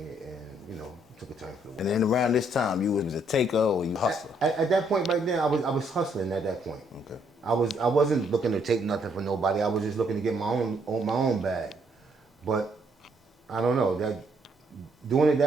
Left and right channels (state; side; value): normal; both; correlation 0.70